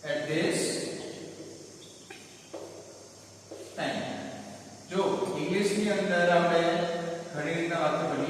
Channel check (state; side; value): identical; both; correlation 1.00